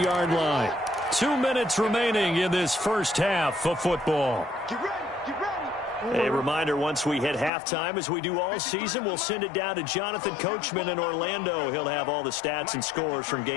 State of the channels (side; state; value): right; drops out; at 7.5 s